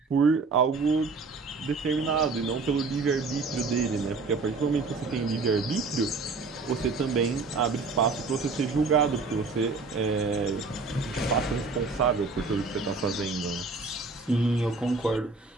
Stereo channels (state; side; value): quieter; left; 4.1 dB